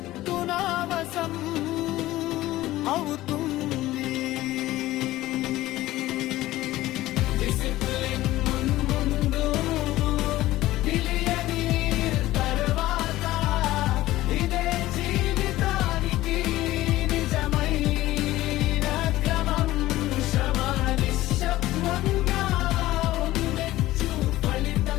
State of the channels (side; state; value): right; quieter; 16.3 dB